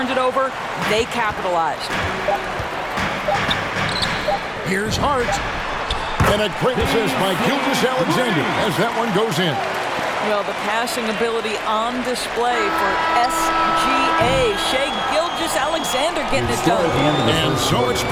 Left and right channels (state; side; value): identical; both; correlation 1.00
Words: it over, they capitalized. Here's Hart. And a great assist by Gilgeous-Alexander as that one goes in. Well, the passing ability on display for SGA. Shai Gilgeous-Alexander getting it done. And so it's